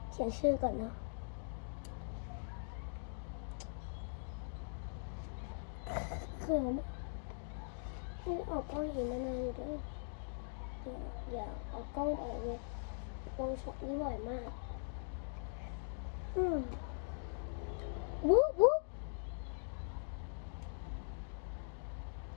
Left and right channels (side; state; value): right; silent; digital silence